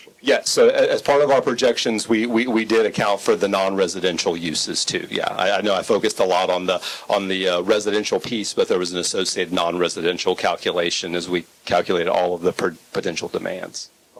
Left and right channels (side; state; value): both; identical; correlation 1.00